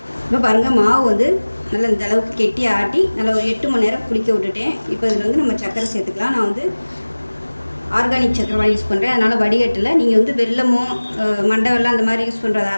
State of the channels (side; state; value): both; inverted; correlation -1.00